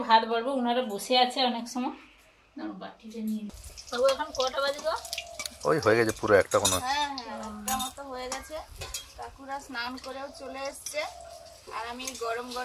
ভাত বাড়বো। ওনারা বসে আছে অনেক সময়। বাটিতে নিয়ে বাবু, এখন কটা বাজে গো? ওই হয়ে গেছে পুরো একটা কোনো। হ্যাঁ হ্যাঁ, একটা মতো হয়ে গেছে। কাকুরা স্নান করেও চলে এসছে, আর আমি গরম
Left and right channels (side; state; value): both; identical; correlation 1.00